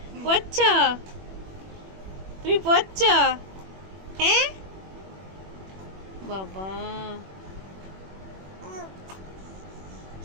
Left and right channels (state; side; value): late; left; 21 ms